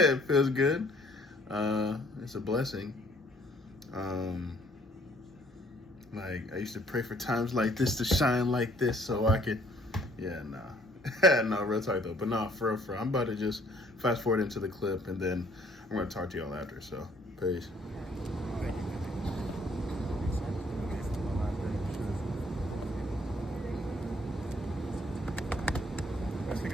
feels good. It's a blessing. Like, I used to pray for times like this to shine like this so I could, no, real talk though. But no, for real, I'm about to just fast forward into the clip and then I'm going to talk to y'all after. So, peace. Let's take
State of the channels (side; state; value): both; normal; correlation 0.62